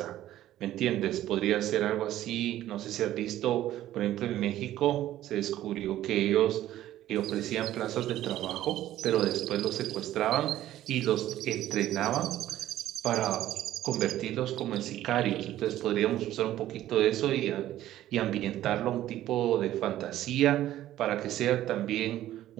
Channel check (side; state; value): left; quieter; 13.5 dB